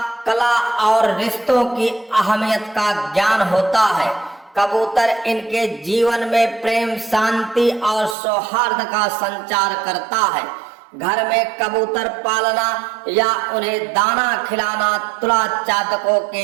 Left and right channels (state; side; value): drops out; left; at 8.2 s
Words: कला और रिश्तों की अहमियत का ज्ञान होता है। कबूतर इनके जीवन में प्रेम, शांति और सौहार्द का संचार करता है। घर में कबूतर पालना या उन्हें दाना खिलाना तुला जातकों